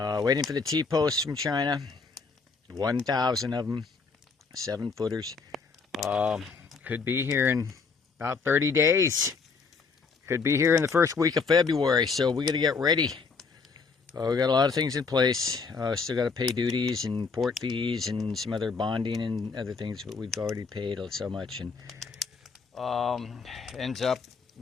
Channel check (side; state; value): right; quieter; 4.9 dB